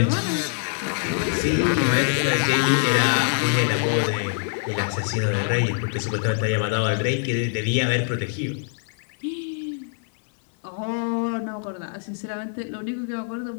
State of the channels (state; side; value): silent; right; 59 dB below the other